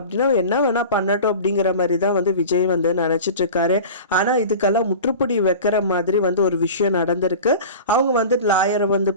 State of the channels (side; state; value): both; inverted; correlation -0.35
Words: என்ன வேணா பண்ணட்டும் அப்படிங்கிற மாதிரி தான் வந்து விஜய் வந்து நினைச்சிட்டு இருக்காரு. ஆனா இதுக்கெல்லாம் முற்றுப்புடி வைக்கிற மாதிரி வந்து ஒரு விஷயம் நடந்திருக்கு. அவங்க வந்து லாயரை வந்து